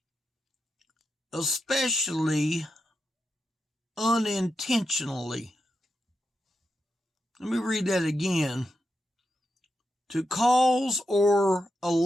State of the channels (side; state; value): both; normal; correlation 0.86